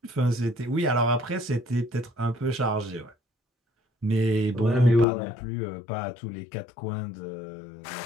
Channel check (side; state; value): right; drops out; at 5.1 s